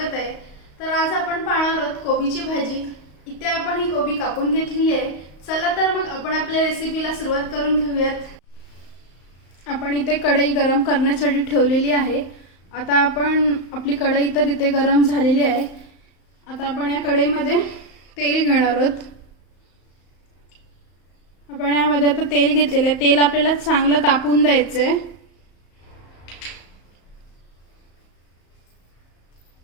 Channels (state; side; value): late; right; 35 ms